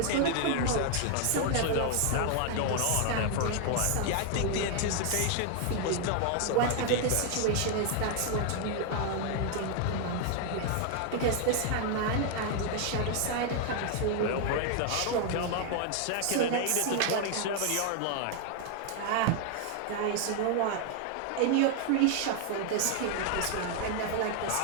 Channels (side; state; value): both; different; correlation 0.00